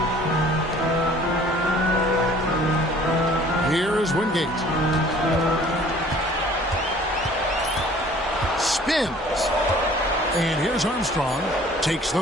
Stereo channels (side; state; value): both; normal; correlation 0.52